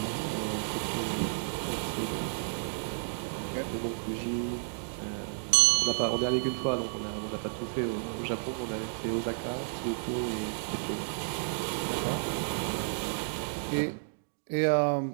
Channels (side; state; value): left; silent; digital silence